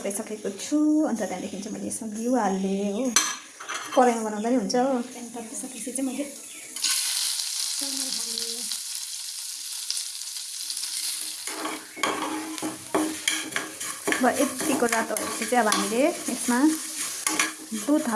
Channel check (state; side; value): identical; both; correlation 1.00